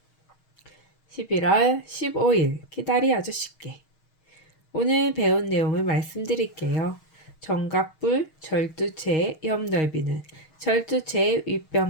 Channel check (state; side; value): late; right; 6.4 ms